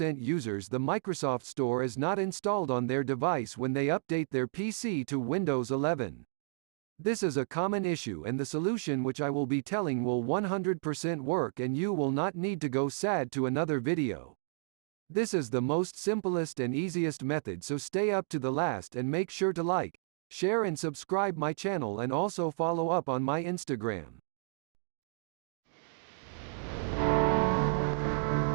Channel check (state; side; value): silent; left; digital silence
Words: users the Microsoft Store is not installed on their device when they update their PC to Windows 11. This is a common issue and the solution which I will be telling will 100% work and you will not need to go sad to another video. This is the most simplest and easiest method, so stay up to the last and make sure to like, share and subscribe my channel and also follow up on my Instagram.